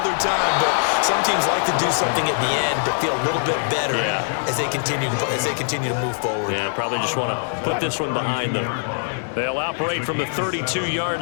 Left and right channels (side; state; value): right; silent; 59 dB below the other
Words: time. But some teams like to do something at the end to feel a little bit better as they continue to move forward. Yeah, probably just want to put this one behind them. They'll operate from the 32-yard